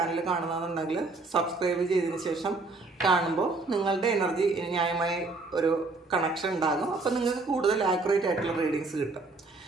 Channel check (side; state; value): left; quieter; 3.6 dB